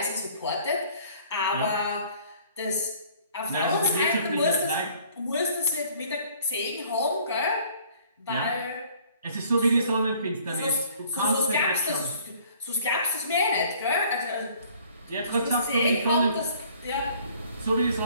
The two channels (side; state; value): both; inverted; correlation -0.56